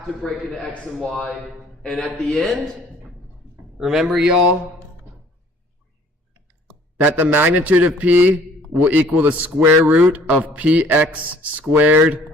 to break into X and Y. And at the end, remember y'all, that the magnitude of P will equal the square root of Px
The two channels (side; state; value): both; normal; correlation 0.55